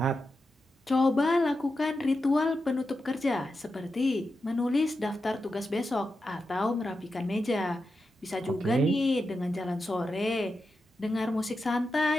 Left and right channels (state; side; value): normal; both; correlation 0.89